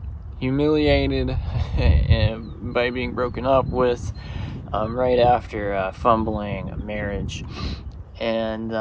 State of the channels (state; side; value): identical; both; correlation 1.00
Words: humiliated by being broken up with right after fumbling a marriage, and